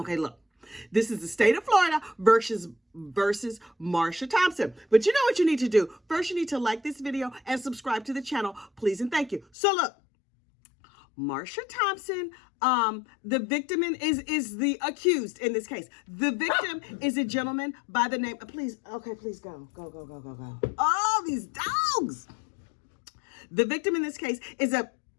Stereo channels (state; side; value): drops out; right; at 9.5 s